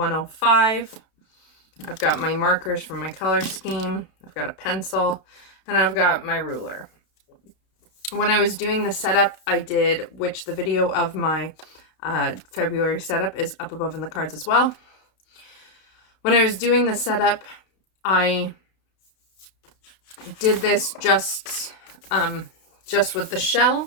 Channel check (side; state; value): right; late; 32 ms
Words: I've got my markers from my color scheme. I've got a pencil, and I've got my ruler. When I was doing the setup, I did, which the video of my February setup is up above in the cards as well. When I was doing the setup, I did this just with the shell,